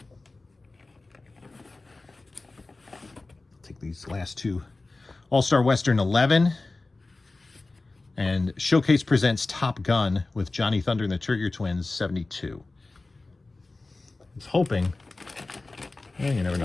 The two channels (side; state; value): right; quieter; 3.3 dB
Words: Take these last two. All-Star Western 11. And Showcase presents Top Gun with Johnny Thunder and the Trigger Twins 72. I was hoping. You never